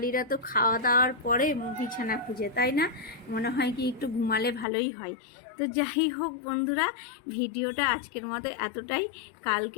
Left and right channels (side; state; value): right; drops out; at 4.7 s